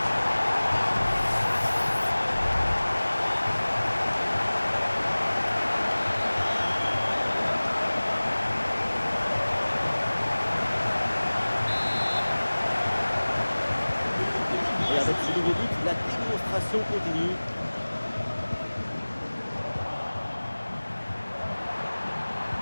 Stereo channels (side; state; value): both; inverted; correlation -1.00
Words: Et avec ce nouveau but, la démonstration continue.